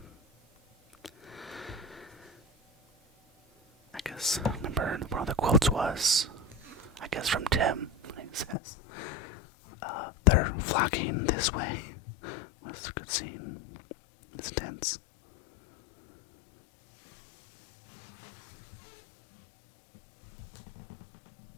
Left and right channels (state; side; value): drops out; right; at 8.6 s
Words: I guess, remember, one of the quotes was, I guess from Tim, he says, they're flocking this way. That's a good scene. It's tense.